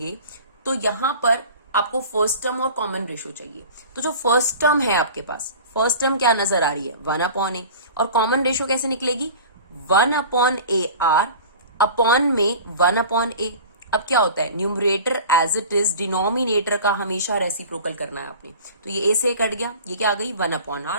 तो यहां पर आपको फर्स्ट टर्म और कॉमन रेशो चाहिए. तो जो फर्स्ट टर्म है आपके पास, फर्स्ट टर्म क्या नजर आ रही है? 1 अपॉन ए. और कॉमन रेशो कैसे निकलेगी? 1 अपॉन ए आर अपॉन में 1 अपॉन ए. अब क्या होता है? Numerator as it is, denominator का हमेशा रेसिप्रोकल करना है आपने. तो ये ए से कट गया, ये क्या आ गई? 1 upon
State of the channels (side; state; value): both; inverted; correlation -0.39